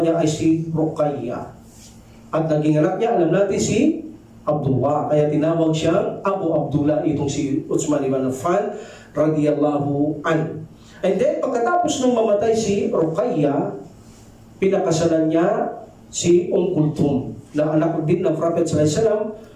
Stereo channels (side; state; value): both; identical; correlation 1.00